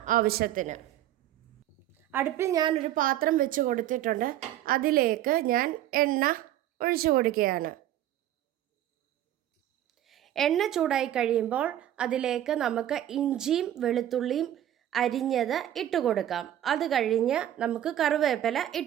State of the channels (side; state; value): left; quieter; 12.2 dB